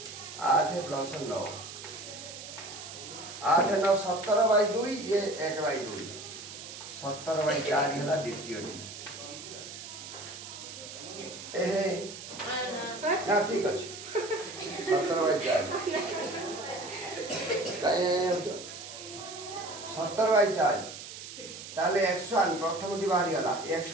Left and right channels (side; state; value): right; noise; hiss, 12 dB below the sound